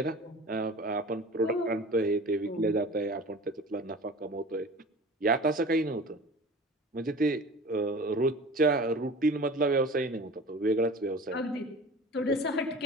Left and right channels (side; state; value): both; normal; correlation 0.40